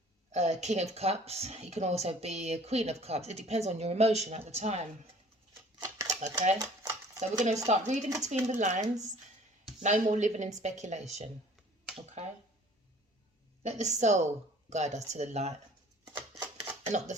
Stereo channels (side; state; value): both; normal; correlation 0.52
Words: King of Cups, you can also be a Queen of Cups. It depends on your emotion at the time, okay? So we're going to start reading between the lines. No more living in speculation, okay? Let the soul guide us to the light and not the